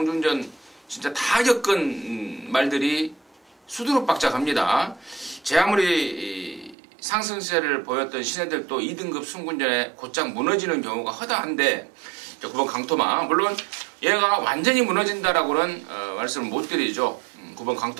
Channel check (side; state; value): left; drops out; at 6.8 s